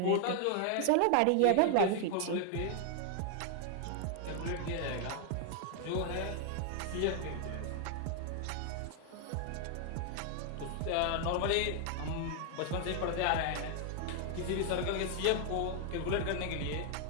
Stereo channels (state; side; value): different; both; correlation 0.00